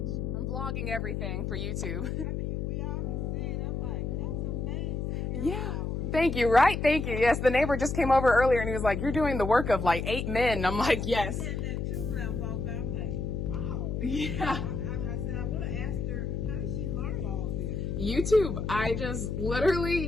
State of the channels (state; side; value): noise; left; hum, 2 dB below the sound